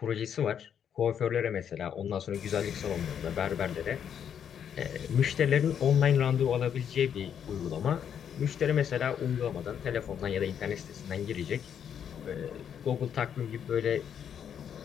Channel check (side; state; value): right; quieter; 8.4 dB